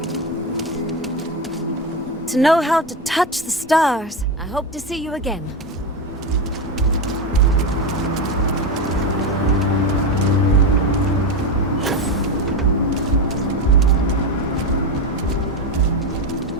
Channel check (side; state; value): both; normal; correlation 0.15